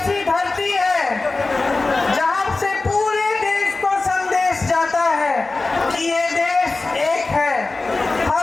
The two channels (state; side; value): quieter; right; 3.5 dB